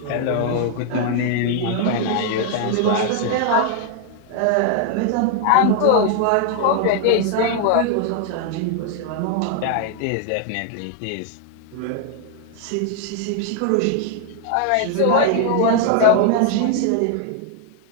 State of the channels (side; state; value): both; different; correlation 0.00